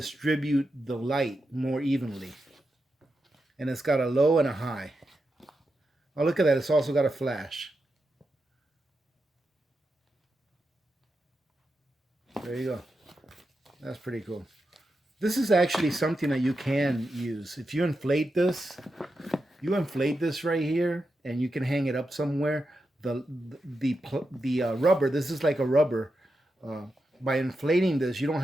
the light more evenly. And it's got a low and a high. Oh, look at that. It's also got a flash. There you go. That's pretty cool. This is actually something that you can use. If you inflate this right here, and you can hang it up somewhere. The rubber, this is like a rubber. By inflating this, you don't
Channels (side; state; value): both; normal; correlation 0.88